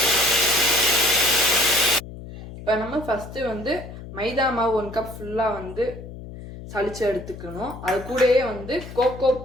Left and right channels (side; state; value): left; noise; hum, 13 dB below the sound